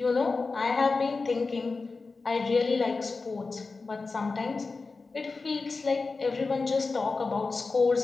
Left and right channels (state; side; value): quieter; right; 4.1 dB